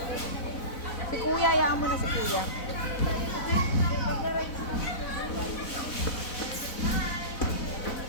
Si kuya, hayaan mo na si kuya.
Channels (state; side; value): late; right; 4.0 ms